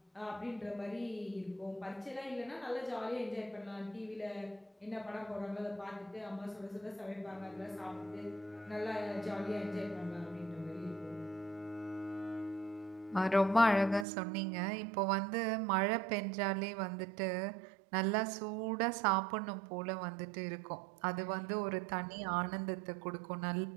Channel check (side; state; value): left; drops out; at 14.1 s